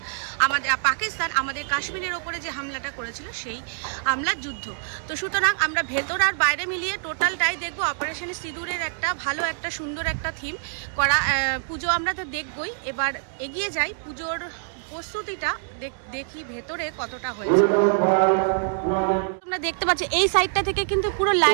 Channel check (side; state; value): left; silent; digital silence